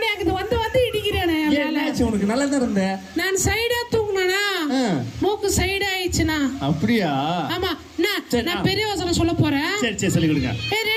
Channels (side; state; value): both; identical; correlation 1.00